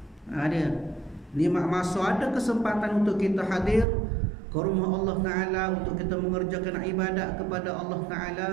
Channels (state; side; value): drops out; left; at 3.9 s